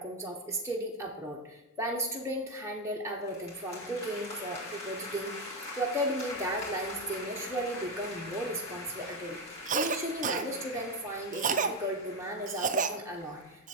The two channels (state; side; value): normal; both; correlation 0.09